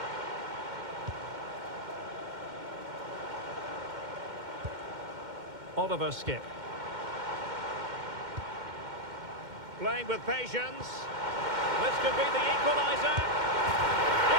Oliver Skip. Playing with patience. This could be the equaliser.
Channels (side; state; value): left; late; 2.1 ms